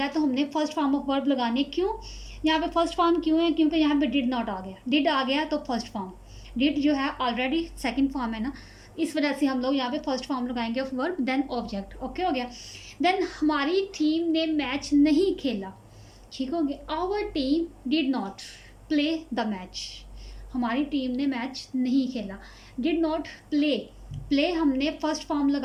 तो हमने फर्स्ट फॉर्म ऑफ वर्ब लगाने। क्यों यहाँ पे फर्स्ट फॉर्म क्यों है, क्योंकि यहाँ पे डिड नॉट आ गया, डिड आ गया तो फर्स्ट फॉर्म, डिड जो है ऑलरेडी सेकंड फॉर्म है ना, इस वजह से हम लोग यहाँ पे फर्स्ट फॉर्म लगाएंगे of verb, then object. Okay हो गया। देन हमारी टीम ने मैच नहीं खेला। ठीक हो गया। Our team did not play the match, हमारी टीम ने मैच नहीं खेला। डिड नॉट प्ले, प्ले हमने फर्स्ट फॉर्म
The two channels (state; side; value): identical; both; correlation 1.00